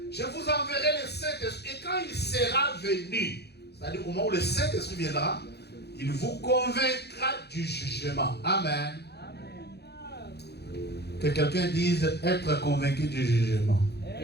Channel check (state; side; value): late; right; 0.48 ms